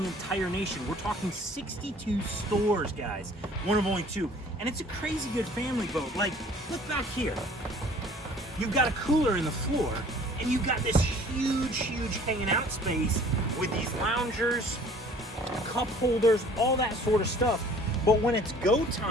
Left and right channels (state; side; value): normal; both; correlation 0.52